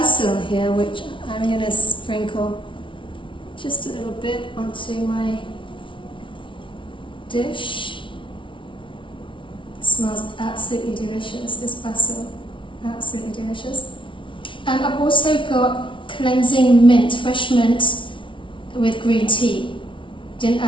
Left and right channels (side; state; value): right; late; 0.25 ms